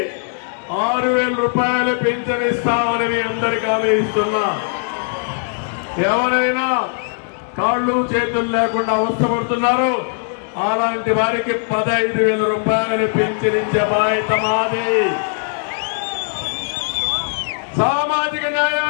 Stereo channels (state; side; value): silent; right; digital silence